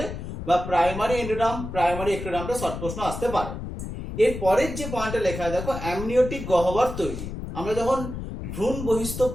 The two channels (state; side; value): noise; left; rumble, 7 dB below the sound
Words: বা প্রাইমারি এন্ডোডার্ম, প্রাইমারি এক্টোডার্মটা শর্ট প্রশ্ন আসতে পারে। এর পরের যে পয়েন্টটা লেখা দেখো অ্যামনিওটিক গহ্বর তৈরি। আমরা যখন ভ্রূণ বহিস্থ